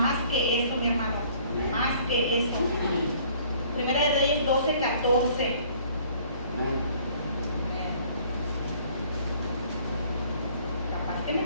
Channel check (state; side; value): inverted; both; correlation -0.57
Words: que eso, mi hermano. Más que eso. Primera de Reyes 12, 14. Capaz que me